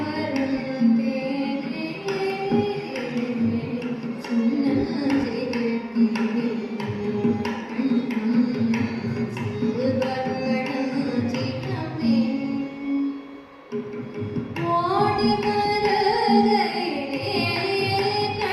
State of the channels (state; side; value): identical; both; correlation 1.00